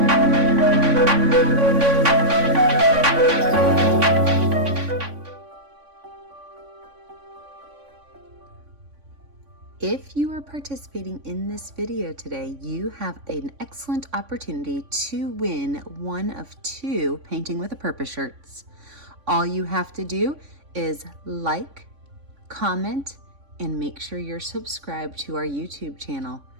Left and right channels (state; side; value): late; left; 3.5 ms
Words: you are participating in this video today, you have an excellent opportunity to win one of 2 Painting with a Purpose shirts. All you have to do is like, comment, and make sure you're subscribed to our YouTube channel.